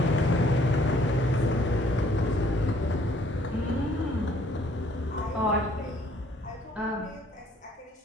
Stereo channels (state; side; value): normal; both; correlation 0.62